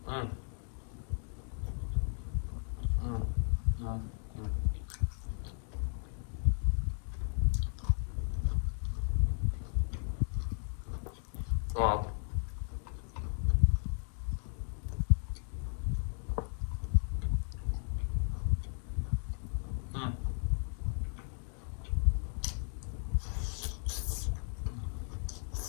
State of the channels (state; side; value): silent; right; 54 dB below the other